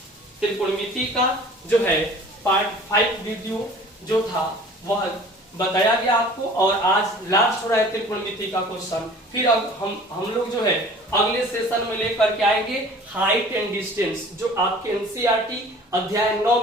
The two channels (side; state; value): both; normal; correlation 0.46